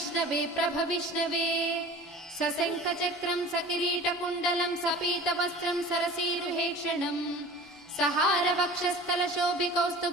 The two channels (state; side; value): normal; both; correlation 0.41